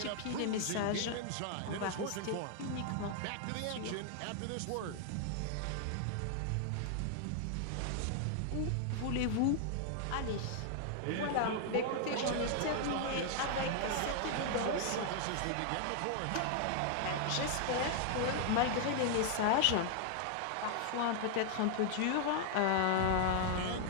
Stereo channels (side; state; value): both; different; correlation 0.00